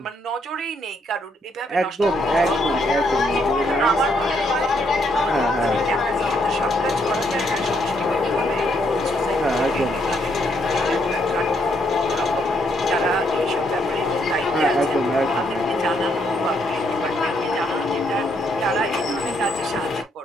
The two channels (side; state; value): both; normal; correlation 0.73